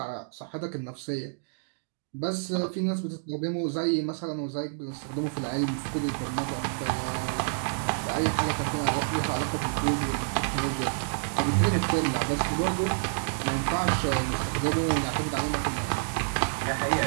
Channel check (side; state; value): left; silent; digital silence